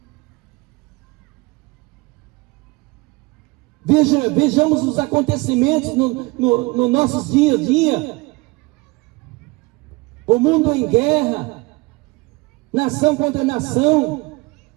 Vejamos os acontecimentos no nossos dia a dia. O mundo em guerra, nação contra nação,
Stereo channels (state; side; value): quieter; left; 24.8 dB